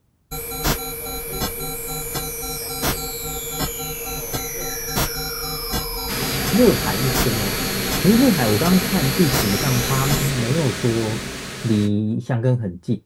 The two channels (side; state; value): both; identical; correlation 1.00